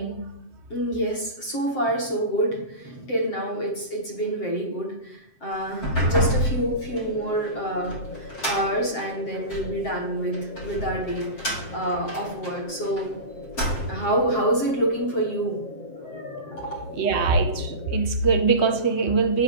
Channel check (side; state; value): right; late; 7.7 ms